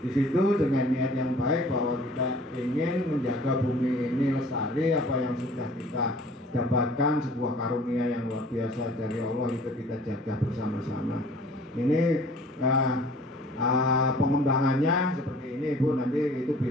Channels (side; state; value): both; normal; correlation 0.51